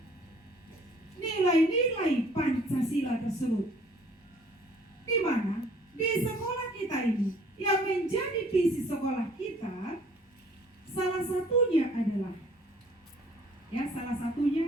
nilai-nilai Pancasila tersebut, di mana di sekolah kita ini yang menjadi visi sekolah kita salah satunya adalah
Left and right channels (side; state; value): both; normal; correlation 0.56